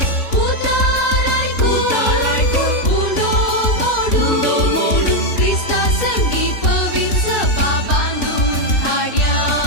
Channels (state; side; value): late; right; 3.5 ms